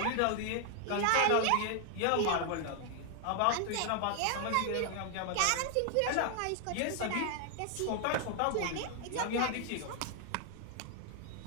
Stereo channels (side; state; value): both; different; correlation 0.00